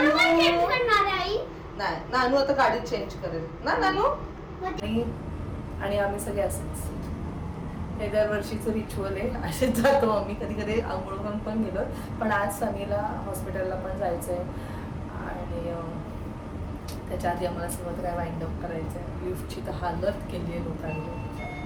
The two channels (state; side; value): identical; both; correlation 1.00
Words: नाही, नानू आता गाडीत चेंज करेल ना नानू. आणि आम्ही सगळे असंच, हे दरवर्षीचं रिच्युअल आहे, असेच जातो आम्ही. कधी कधी आंघोळ करून पण गेलो, पण आज सनीला हॉस्पिटलला पण जायचं आहे आणि त्याच्या आधी आम्हाला सगळं काय वाइंड अप करायचं आहे. लिफ्टची तर हालत केली आहे